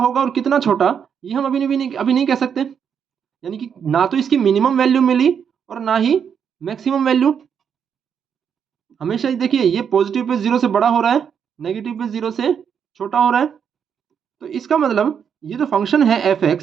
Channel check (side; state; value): left; quieter; 7.5 dB